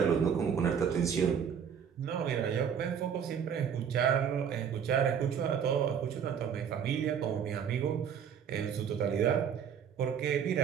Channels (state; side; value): quieter; left; 7.8 dB